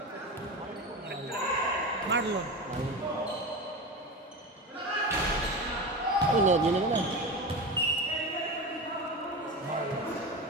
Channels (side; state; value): both; normal; correlation 0.24